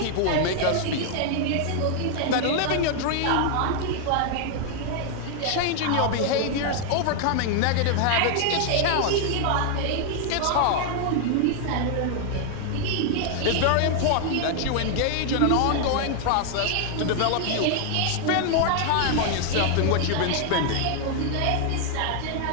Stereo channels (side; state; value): both; different; correlation 0.00